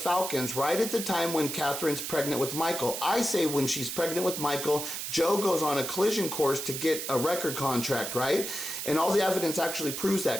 right at the time when Catherine's pregnant with Michael. I say when she's pregnant with Michael, Joe goes on a collision course to get a record contract, right? And all the evidence actually proves that,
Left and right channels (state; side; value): noise; right; hiss, 5 dB below the sound